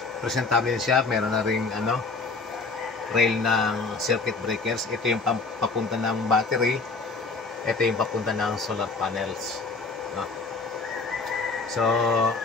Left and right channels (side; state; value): right; quieter; 4.1 dB